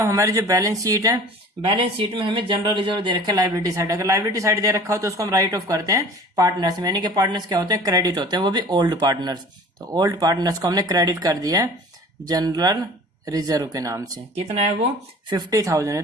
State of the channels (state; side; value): normal; both; correlation 0.44